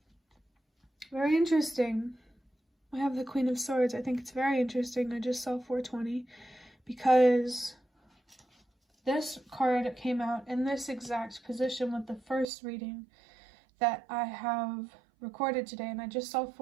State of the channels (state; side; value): drops out; left; at 12.5 s